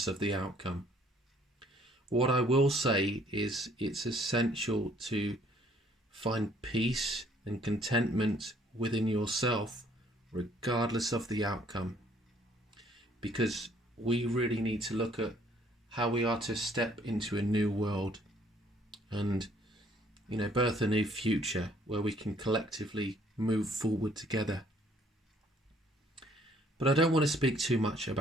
of the outcome. What I will say is it's essential to find peace and contentment within yourself, regardless of the outcome. Because we really need to look at how we are to step into a new world and, birth a new future where we can collectively move forward together. But I don't want to speak too much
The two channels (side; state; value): both; normal; correlation 0.62